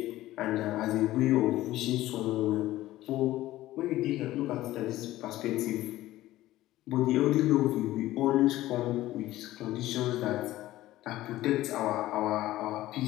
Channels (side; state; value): right; quieter; 15.7 dB